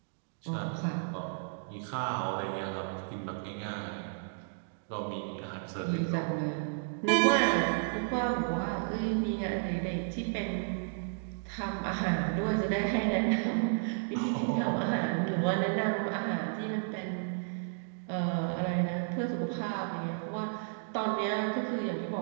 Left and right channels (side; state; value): left; silent; digital silence